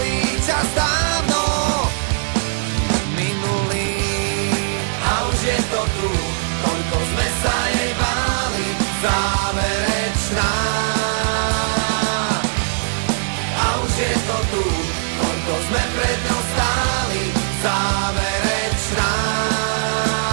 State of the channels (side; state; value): left; silent; digital silence